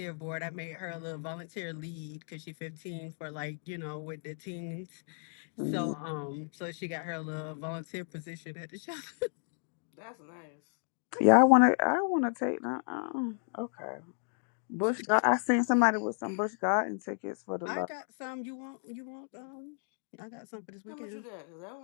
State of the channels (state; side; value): silent; right; 55 dB below the other